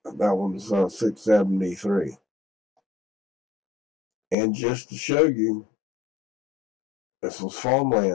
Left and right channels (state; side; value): drops out; right; at 4.4 s